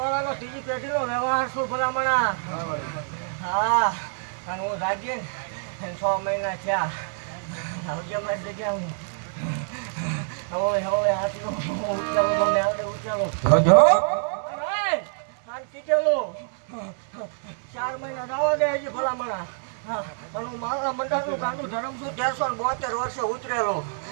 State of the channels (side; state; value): left; silent; digital silence